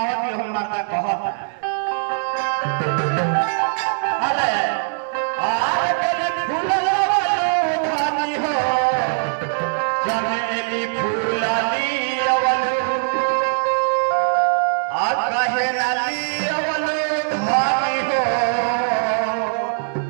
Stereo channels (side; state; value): left; silent; digital silence